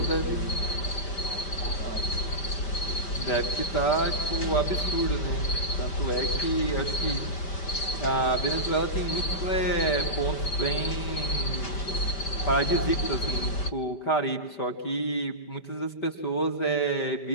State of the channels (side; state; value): right; late; 5.1 ms